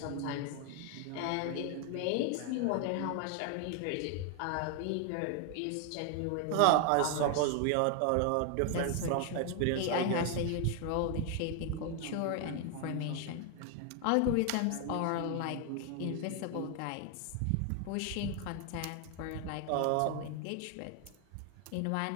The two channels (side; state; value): both; different; correlation 0.00